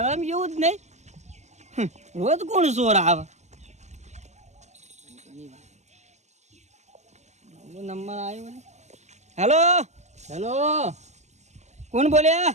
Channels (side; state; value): left; late; 0.33 ms